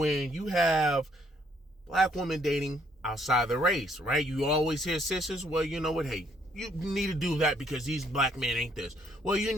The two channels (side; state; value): both; normal; correlation 0.68